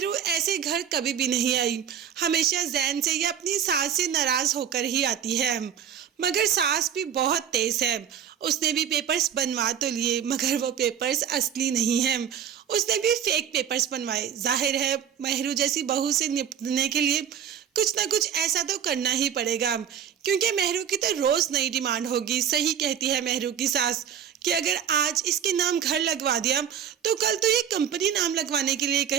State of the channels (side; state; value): left; quieter; 8.8 dB